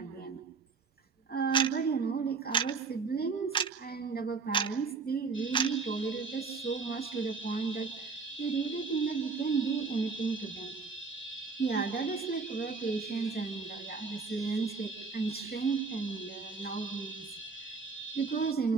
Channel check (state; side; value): quieter; left; 4.9 dB